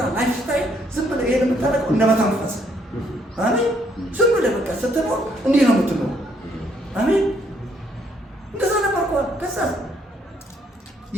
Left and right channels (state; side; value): normal; both; correlation 0.69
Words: ላይፍ ስታይል ዝም ብለህ ይሄን የምታደርገው እንደመተንፈስ አሜን። ዝም ብለህ በቃ ስትኖር እንዲህ ነው የምትኖር አሜን። እንደዛ ነበርኳት። ከዛ